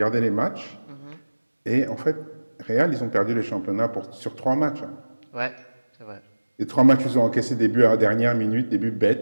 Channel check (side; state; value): both; inverted; correlation -1.00